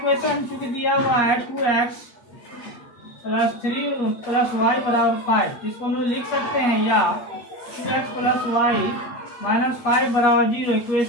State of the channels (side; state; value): right; late; 8.4 ms